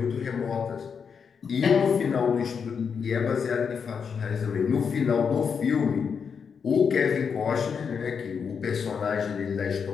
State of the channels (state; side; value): quieter; right; 6.4 dB